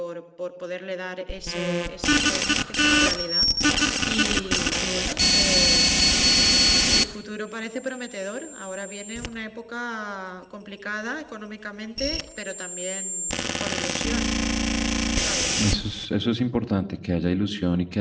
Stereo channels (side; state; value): both; identical; correlation 1.00